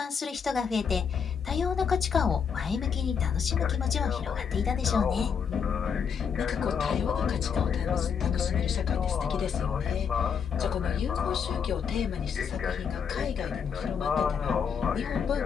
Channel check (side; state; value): right; quieter; 6.8 dB